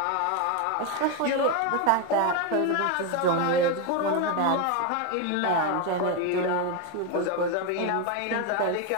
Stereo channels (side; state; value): both; different; correlation 0.02